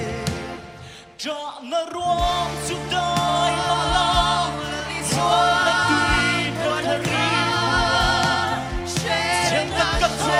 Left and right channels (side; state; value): both; identical; correlation 1.00